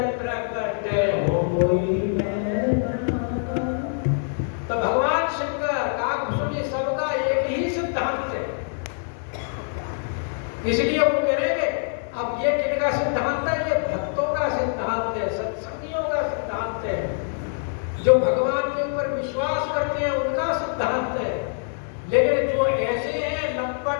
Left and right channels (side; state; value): right; silent; 59 dB below the other